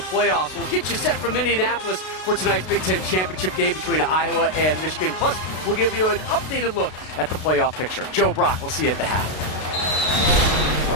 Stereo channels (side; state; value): right; late; 32 ms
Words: We'll get you set from Indianapolis for tonight's Big Ten championship game between Iowa and Michigan. Plus, we'll give you an updated look at the playoff picture. Joe Brock, we'll see you at the half. All